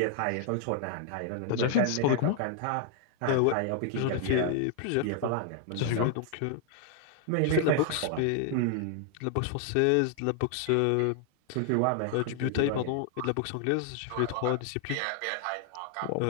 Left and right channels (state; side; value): different; both; correlation 0.00